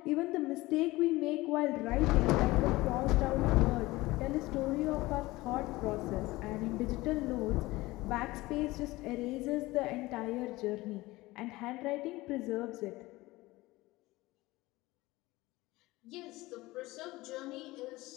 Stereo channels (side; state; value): right; quieter; 19.8 dB